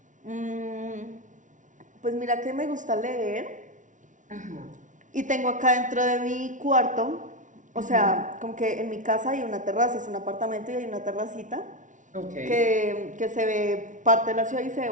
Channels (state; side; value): late; left; 0.37 ms